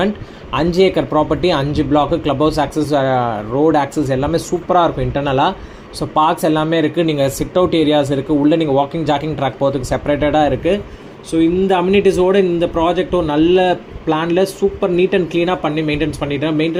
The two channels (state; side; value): identical; both; correlation 1.00